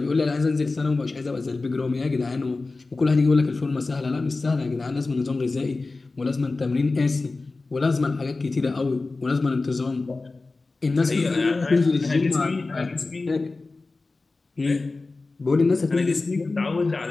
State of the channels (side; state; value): right; quieter; 3.5 dB